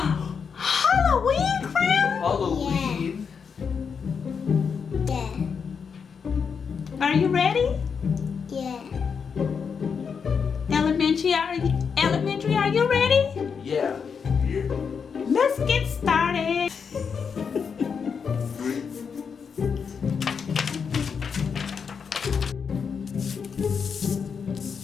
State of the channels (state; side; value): quieter; right; 6.2 dB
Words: Halloween crown? Halloween. Yeah. Are you ready? Yeah. Elementary, are you ready? Yeah. Let's get started.